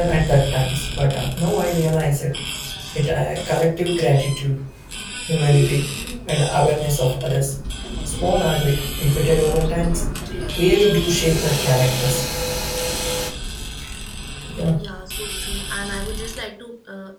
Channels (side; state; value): both; identical; correlation 1.00